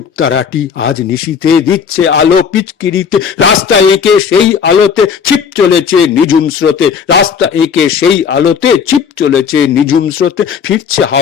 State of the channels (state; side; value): quieter; right; 6.8 dB